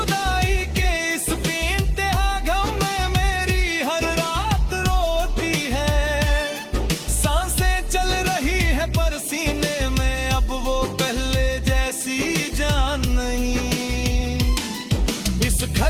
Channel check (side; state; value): both; identical; correlation 1.00